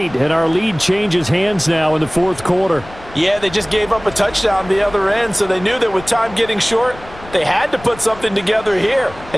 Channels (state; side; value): noise; left; rumble, 18 dB below the sound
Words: and our lead changes hands now in the 4th quarter. Yeah, they just gave up a touchdown the other end, so they knew that with time getting short, they had to put something together here.